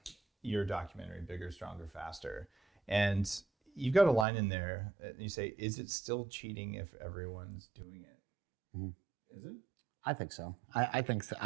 your documentary, Bigger, Stronger, Faster. And you've got a line in there that you say, is it still cheating if everyone's doing it? Mm-hmm. Is it? I think so. I think so.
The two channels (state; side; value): drops out; left; at 4.2 s